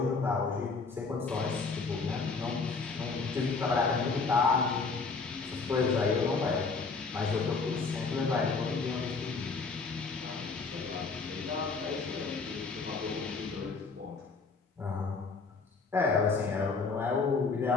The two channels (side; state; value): right; quieter; 4.4 dB